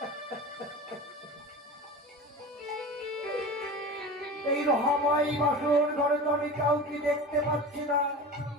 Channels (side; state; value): both; normal; correlation 0.32